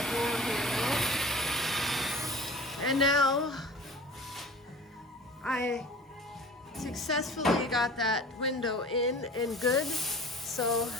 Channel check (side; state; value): both; normal; correlation 0.41